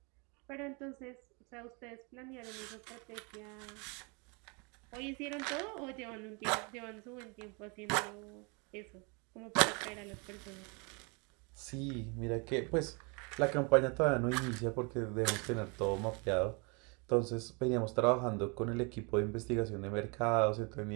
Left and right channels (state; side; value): quieter; left; 31.7 dB